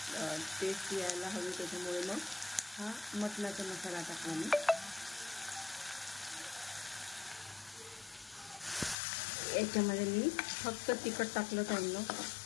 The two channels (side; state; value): right; drops out; at 9.0 s